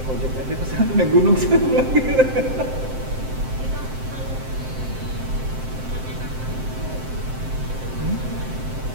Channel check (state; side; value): late; left; 7.7 ms